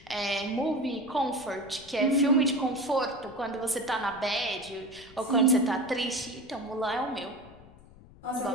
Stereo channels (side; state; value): left; noise; rumble, 23 dB below the sound